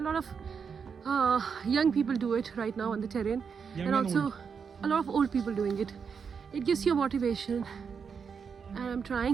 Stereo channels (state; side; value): quieter; left; 6.2 dB